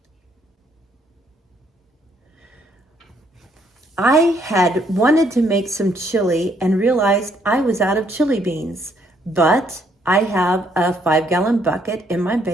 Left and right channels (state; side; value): normal; both; correlation 0.69